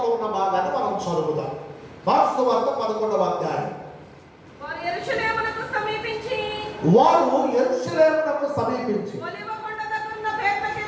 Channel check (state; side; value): identical; both; correlation 1.00